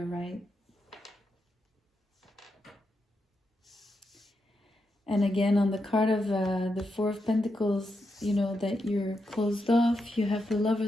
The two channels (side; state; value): both; normal; correlation 0.84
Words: right? And again, on the card of the Four of Pentacles, you know, that you're closed off. You have the